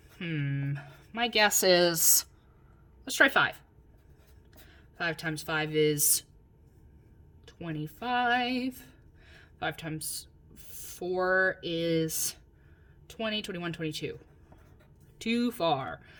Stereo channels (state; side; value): identical; both; correlation 1.00